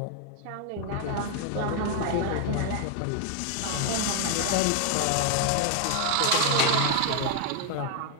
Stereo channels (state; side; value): different; both; correlation 0.00